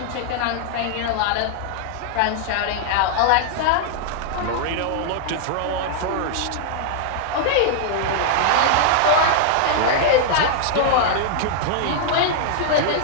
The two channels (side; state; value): both; different; correlation -0.01